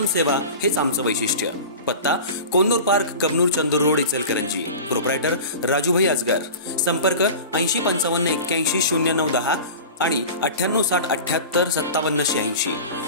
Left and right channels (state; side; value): inverted; both; correlation -0.34